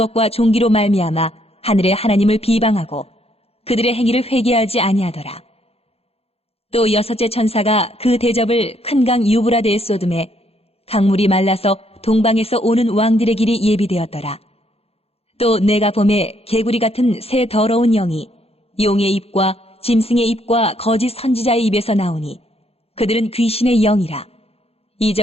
종기로 말미암아 하늘의 하나님을 비방하고 그들의 행위를 회개하지 아니하더라. 또 여섯째 천사가 그 대접을 큰 강 유브라데에 쏟음에 강물이 말라서 동방에서 오는 왕들의 길이 예비되었더라. 또 내가 보매 개구리 같은 새 더러운 영이 용의 입과 짐승의 입과 거짓 선지자의 입에서 나오니 그들은 귀신의 영이라.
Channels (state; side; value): late; right; 0.29 ms